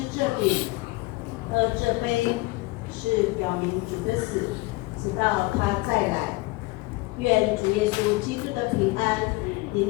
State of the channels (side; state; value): right; quieter; 22.7 dB